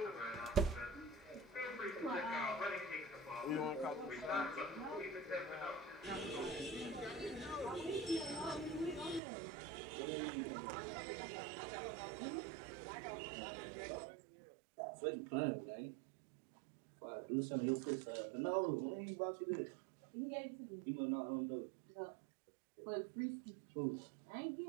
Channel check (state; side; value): drops out; left; at 9.2 s